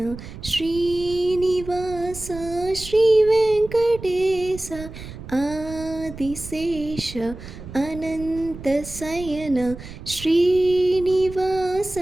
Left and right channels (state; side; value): noise; right; rumble, 13 dB below the sound